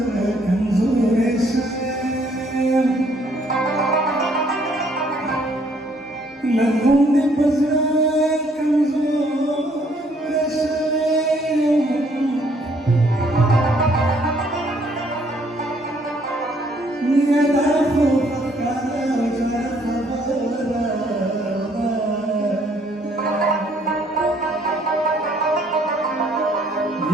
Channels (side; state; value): both; normal; correlation 0.65